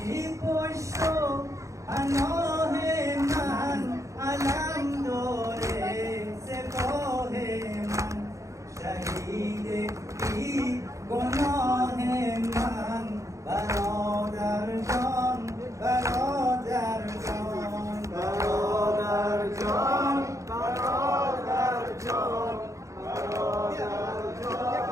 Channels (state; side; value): late; left; 0.15 ms